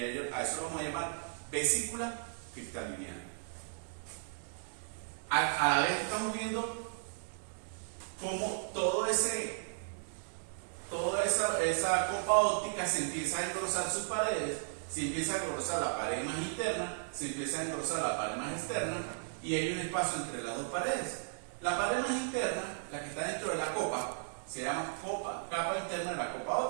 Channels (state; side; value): silent; left; digital silence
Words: a eso lo vamos a llamar vesícula cristaliniana. A la vez estamos viendo cómo toda esa copa óptica se empieza a engrosar sus paredes, se empieza a engrosar la pared más interna, se empieza a engrosar la pared más externa, y hay un espacio entre las dos paredes. La pared más interna, la que está dentro de la copa, se llama capa interna de la copa